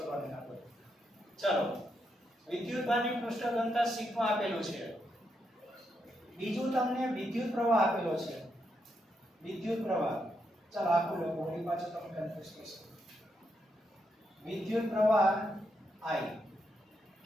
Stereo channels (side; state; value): both; normal; correlation 0.81